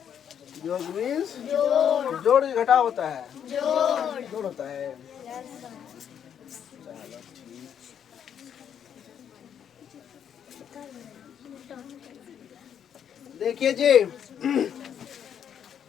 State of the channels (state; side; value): quieter; right; 8.7 dB